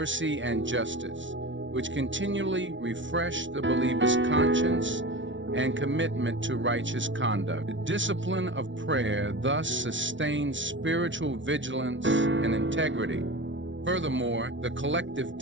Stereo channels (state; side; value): late; left; 0.55 ms